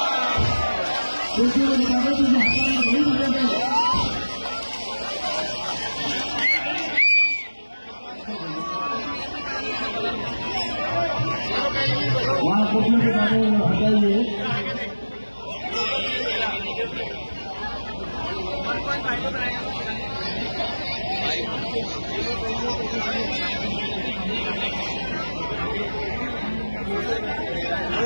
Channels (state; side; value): inverted; both; correlation -1.00